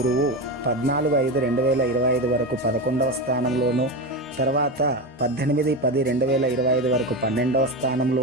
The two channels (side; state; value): both; normal; correlation 0.19